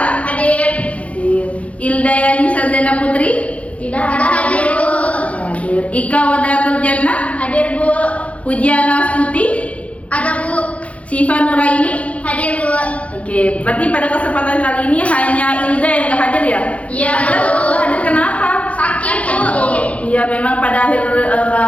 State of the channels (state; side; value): late; right; 0.064 ms